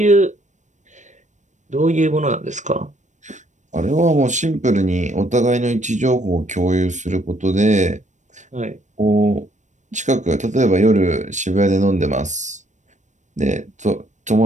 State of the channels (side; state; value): left; late; 0.35 ms